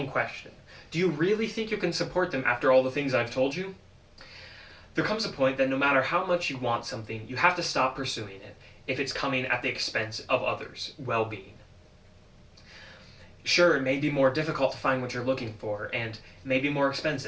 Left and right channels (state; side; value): identical; both; correlation 1.00